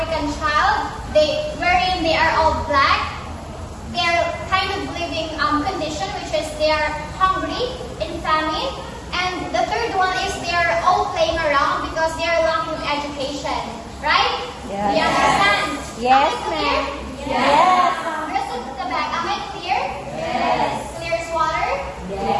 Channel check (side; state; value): both; identical; correlation 1.00